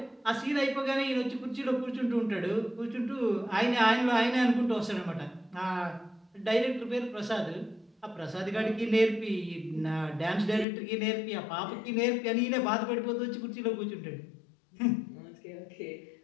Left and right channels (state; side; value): drops out; right; at 10.7 s